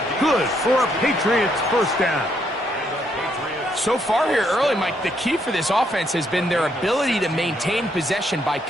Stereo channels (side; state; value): both; normal; correlation 0.74